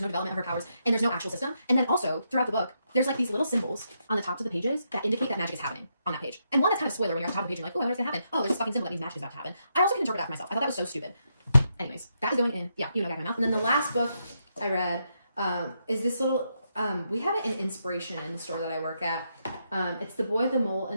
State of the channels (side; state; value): both; inverted; correlation -0.80